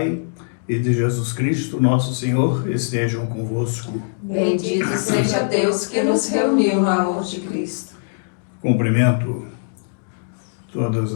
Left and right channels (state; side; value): silent; right; digital silence